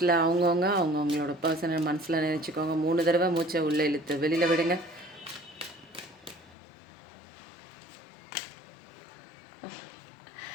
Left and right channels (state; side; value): drops out; right; at 6.6 s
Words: அவங்கவுங்களோட பர்சனை மனசில் நினச்சிக்கோங்க. 3 தடவை மூச்சை உள்ளே இழுத்து வெளியில் விடுங்க.